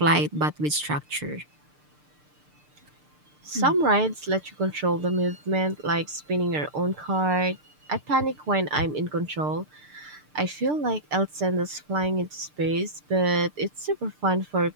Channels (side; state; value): left; late; 6.7 ms